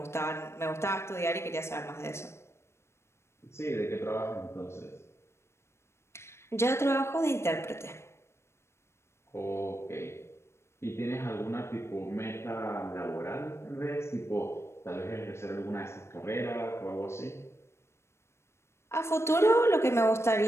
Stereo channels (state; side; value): late; right; 0.13 ms